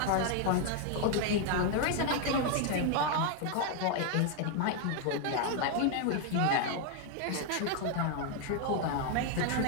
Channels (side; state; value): both; different; correlation 0.00